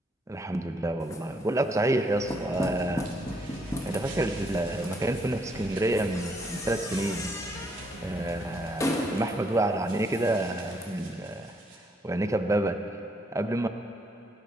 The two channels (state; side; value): normal; both; correlation 0.71